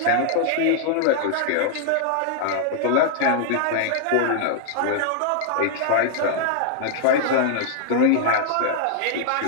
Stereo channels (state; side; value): different; both; correlation -0.01